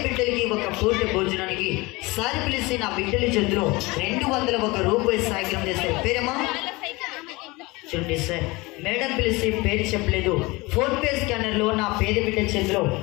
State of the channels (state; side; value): quieter; right; 23.4 dB